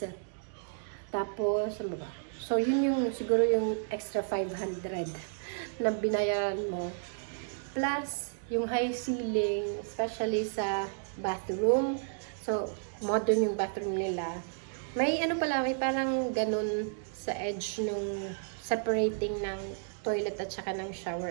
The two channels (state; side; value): silent; left; digital silence